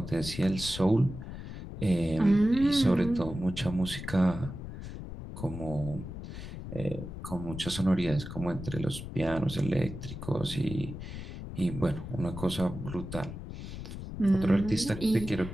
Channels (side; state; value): left; noise; rumble, 9 dB below the sound